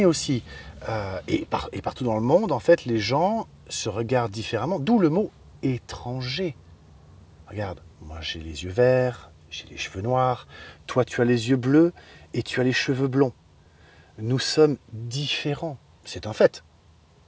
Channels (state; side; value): identical; both; correlation 1.00